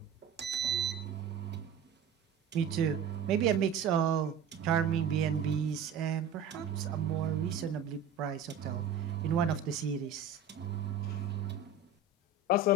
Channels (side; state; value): left; quieter; 4.9 dB